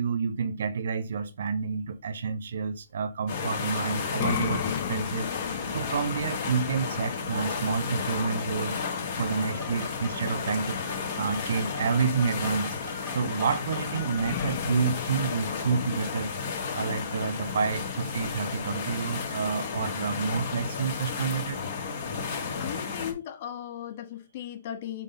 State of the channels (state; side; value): inverted; both; correlation -0.62